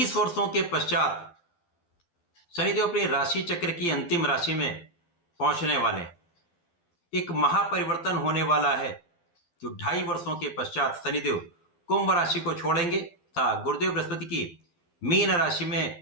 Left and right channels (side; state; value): right; late; 12 ms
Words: वर्षों के पश्चात शनिदेव अपनी राशि चक्र की अंतिम राशि में पहुंचने वाले हैं। एक महापरिवर्तन होने वाला है जो 2.5 वर्षों के पश्चात शनिदेव कुंभ राशि को छोड़ेंगे तथा गुरुदेव बृहस्पति की मीन राशि